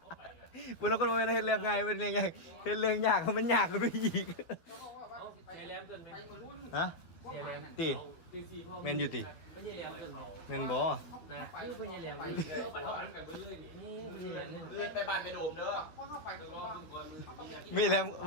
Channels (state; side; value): late; right; 12 ms